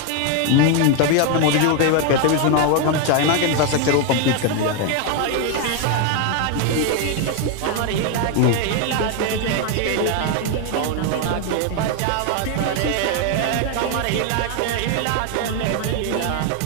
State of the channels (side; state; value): both; different; correlation 0.01